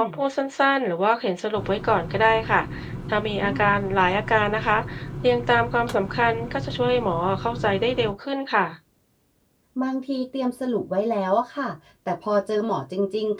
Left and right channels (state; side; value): identical; both; correlation 1.00